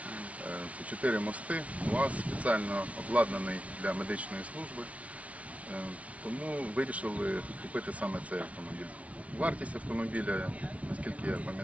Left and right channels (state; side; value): late; left; 0.065 ms